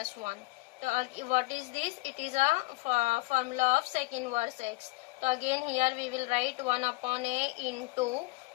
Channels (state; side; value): quieter; right; 23.4 dB